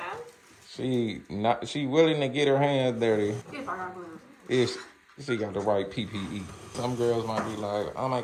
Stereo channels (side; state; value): both; identical; correlation 1.00